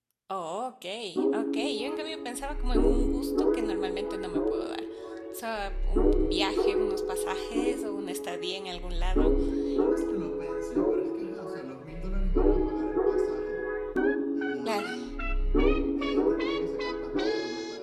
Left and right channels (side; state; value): both; identical; correlation 1.00